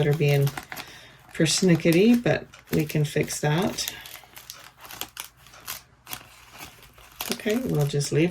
are being persnickety, but we can fix that. Okay, we'll just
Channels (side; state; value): both; identical; correlation 1.00